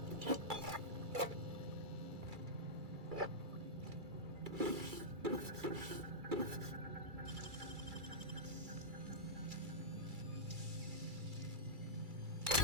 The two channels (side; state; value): left; late; 2.3 ms